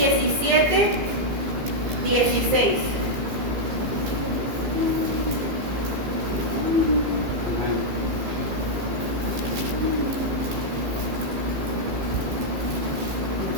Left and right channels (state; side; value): late; left; 15 ms